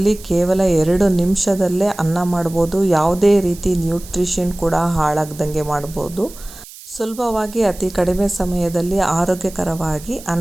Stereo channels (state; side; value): noise; right; hiss, 18 dB below the sound